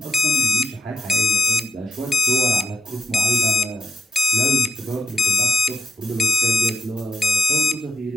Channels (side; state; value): both; normal; correlation 0.79